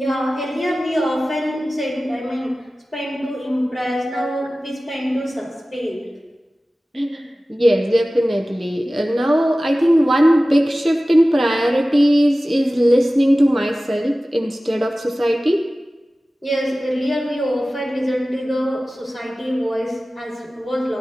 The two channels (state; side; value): normal; both; correlation 0.96